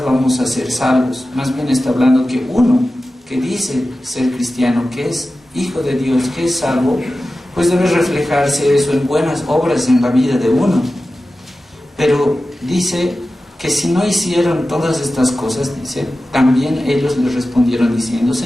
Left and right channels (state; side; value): normal; both; correlation 0.94